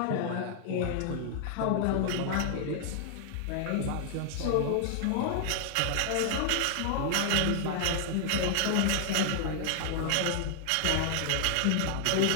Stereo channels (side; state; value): both; different; correlation -0.01